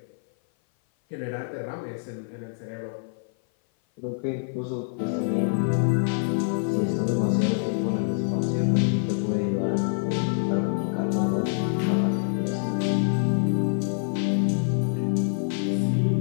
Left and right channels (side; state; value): right; silent; 57 dB below the other